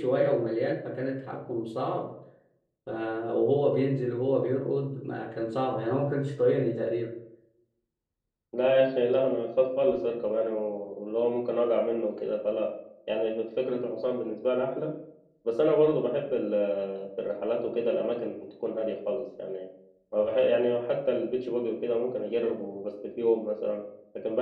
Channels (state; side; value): identical; both; correlation 1.00